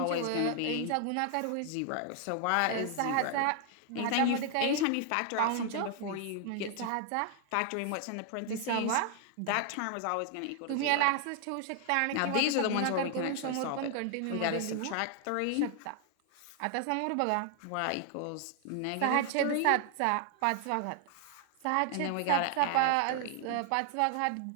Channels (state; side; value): different; both; correlation 0.00